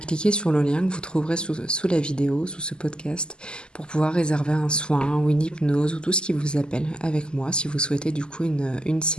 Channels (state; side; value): late; right; 0.048 ms